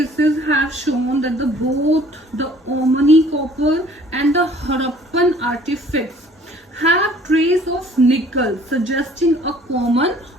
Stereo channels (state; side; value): normal; both; correlation 0.54